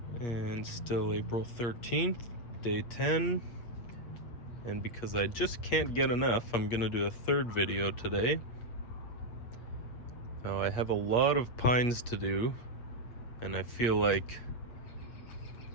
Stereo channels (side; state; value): right; late; 8.4 ms